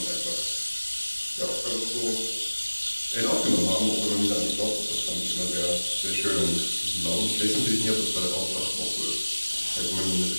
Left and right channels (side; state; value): both; inverted; correlation -1.00